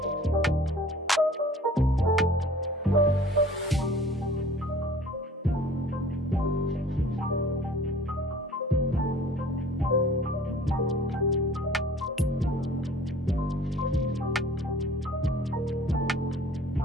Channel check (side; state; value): both; normal; correlation 0.49